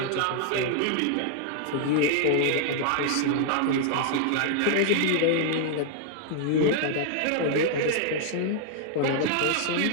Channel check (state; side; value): different; both; correlation 0.00